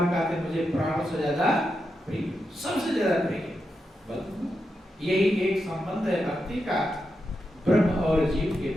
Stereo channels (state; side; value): normal; both; correlation 0.87